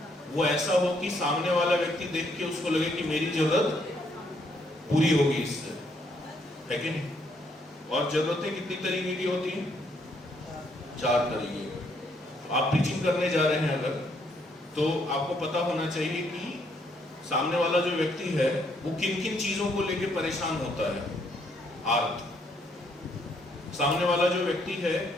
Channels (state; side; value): normal; both; correlation 0.71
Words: वो ऐसा हो कि सामने वाला व्यक्ति देख के उसको लगे कि मेरी जरूरत पूरी होगी इससे, है कि नहीं। और जरूरतें कितनी तरीके की होती हैं? 4 तरीके की। आप टीचिंग करने जा रहे हैं अगर, तो आपको पता होना चाहिए कि सामने वाला जो व्यक्ति है वो किन किन चीजों को लेके परेशान होता है। आर्थ। सामने वाला जो व्यक्ति है